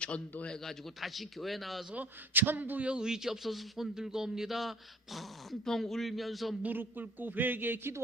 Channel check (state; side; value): normal; both; correlation 0.52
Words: 다시 교회 나와서 천부여 의지 없어서 손 들고 옵니다. 펑펑 울면서 무릎 꿇고 회개에